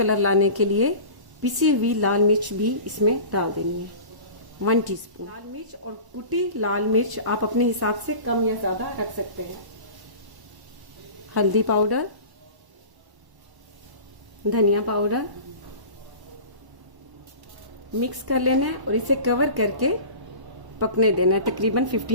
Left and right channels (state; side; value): late; left; 1.1 ms